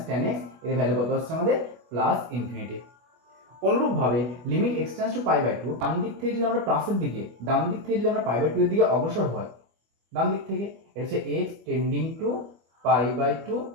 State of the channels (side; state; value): left; late; 25 ms